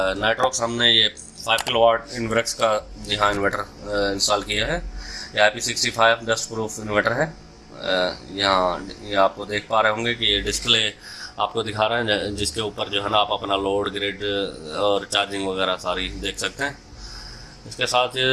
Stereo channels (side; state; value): both; identical; correlation 1.00